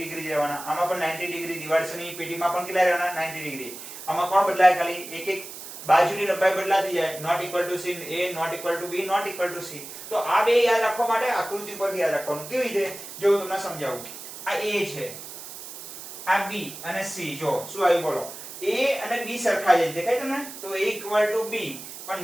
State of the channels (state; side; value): noise; right; hiss, 12 dB below the sound